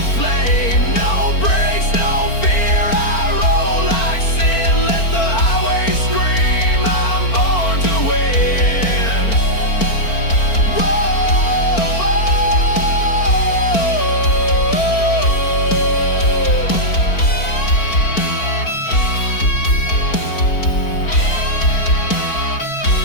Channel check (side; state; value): right; late; 4.4 ms